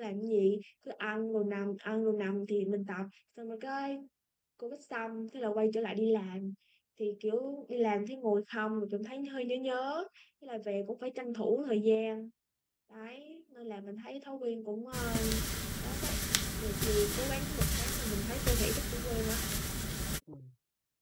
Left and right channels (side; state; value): both; identical; correlation 1.00